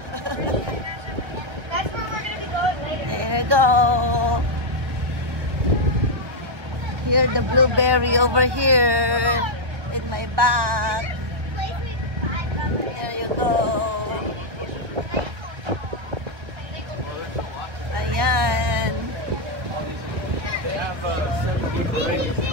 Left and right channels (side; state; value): left; late; 1.0 ms